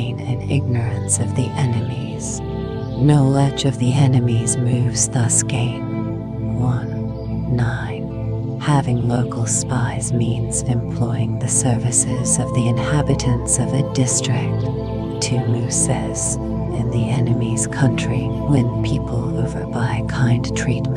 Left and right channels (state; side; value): identical; both; correlation 1.00